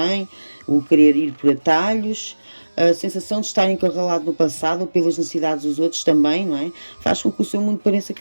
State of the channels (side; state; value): both; inverted; correlation -1.00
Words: o querer ir por atalhos, a sensação de estar encurralado no passado ou pelas necessidades dos outros também, não é? Faz com que o seu mundo pareça